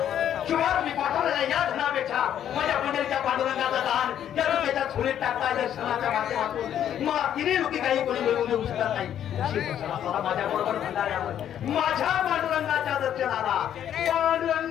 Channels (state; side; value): quieter; right; 10.2 dB